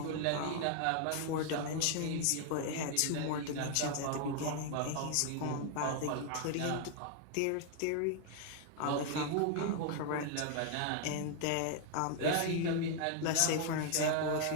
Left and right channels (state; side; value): different; both; correlation 0.00